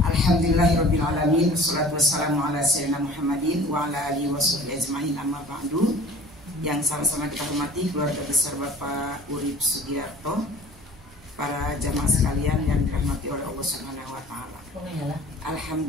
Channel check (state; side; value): normal; both; correlation 0.46